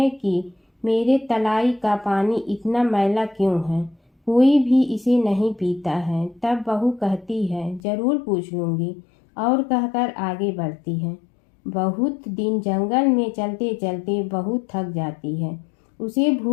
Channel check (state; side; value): drops out; right; at 7.8 s